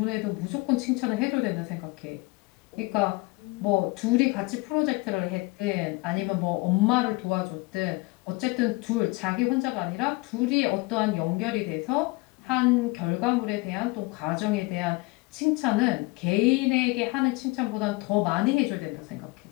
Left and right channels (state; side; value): quieter; right; 24.1 dB